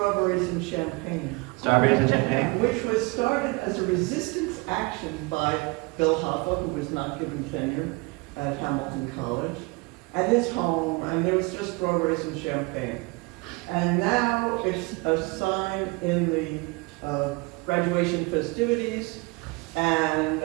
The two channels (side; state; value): left; quieter; 26.5 dB